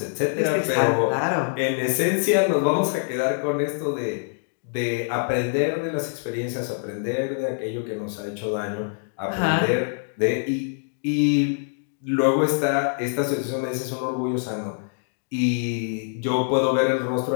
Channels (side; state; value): right; silent; digital silence